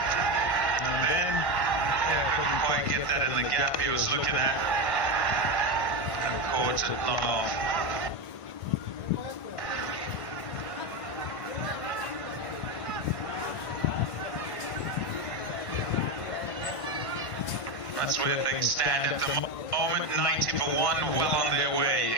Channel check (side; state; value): right; late; 1.5 ms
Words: And then, couldn't quite get that in the gap he was looking at. And caught it long off. That's where things stand at the moment. 90 for 1, well on their way,